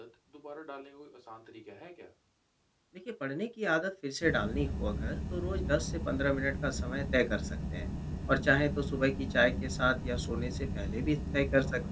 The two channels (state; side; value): identical; both; correlation 1.00